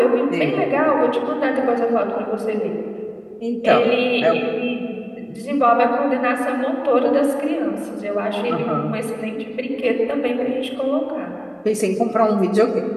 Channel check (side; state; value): both; identical; correlation 1.00